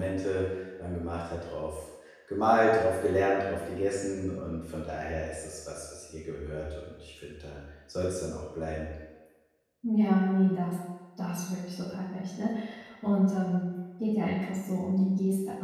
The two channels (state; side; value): identical; both; correlation 1.00